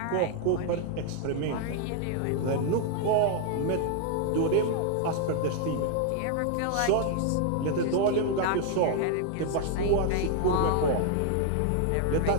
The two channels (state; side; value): different; both; correlation 0.00